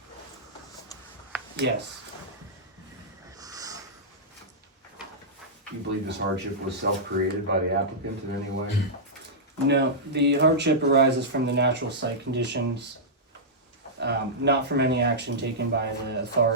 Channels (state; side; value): normal; both; correlation -0.12